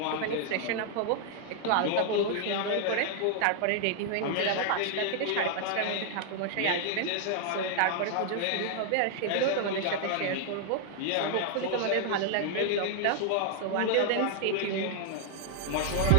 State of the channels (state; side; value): different; both; correlation 0.00